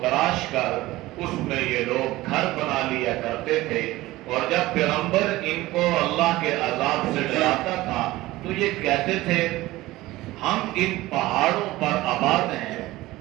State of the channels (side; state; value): left; quieter; 18.0 dB